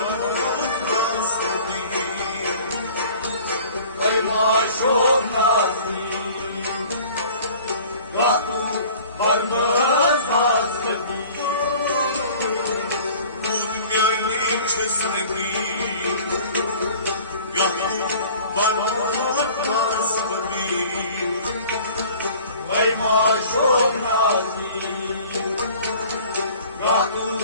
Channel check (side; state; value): both; inverted; correlation -0.47